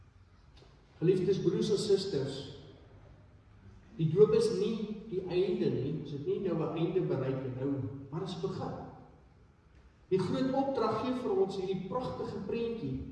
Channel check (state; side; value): identical; both; correlation 1.00